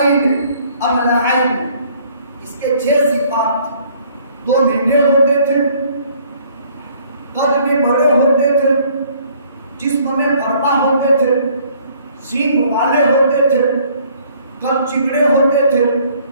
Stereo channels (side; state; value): both; inverted; correlation -0.60